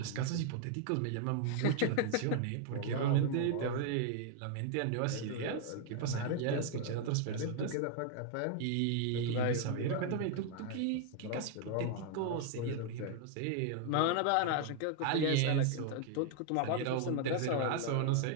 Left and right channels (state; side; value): different; both; correlation 0.00